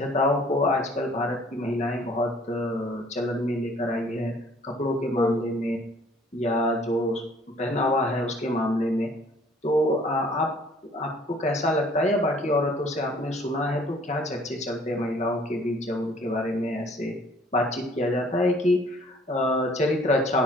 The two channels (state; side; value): normal; both; correlation 0.57